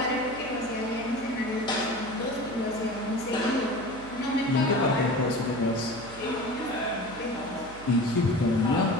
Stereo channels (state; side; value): noise; right; hum, 18 dB below the sound